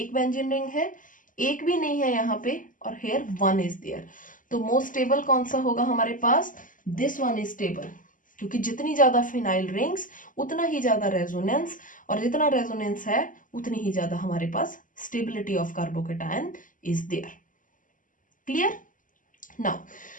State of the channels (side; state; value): right; late; 0.38 ms